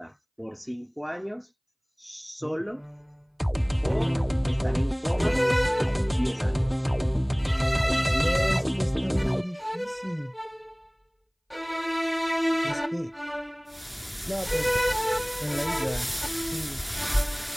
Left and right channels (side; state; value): both; identical; correlation 1.00